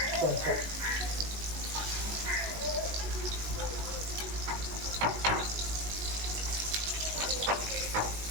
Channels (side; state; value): left; late; 19 ms